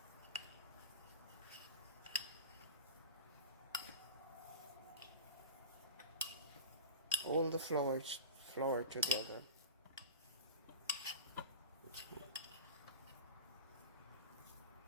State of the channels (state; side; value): inverted; both; correlation -0.32